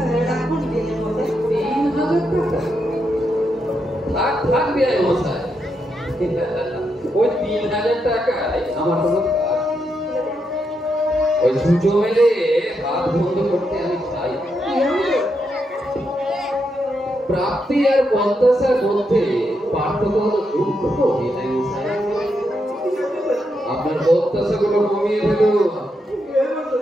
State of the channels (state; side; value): normal; both; correlation 0.82